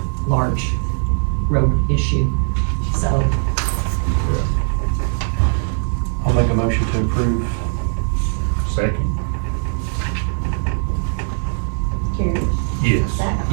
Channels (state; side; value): silent; left; digital silence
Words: large road issue, so. I'll make a motion to approve. Second? Carrie? Yes.